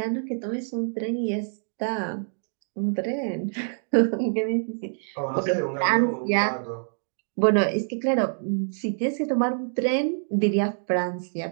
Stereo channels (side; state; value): left; silent; digital silence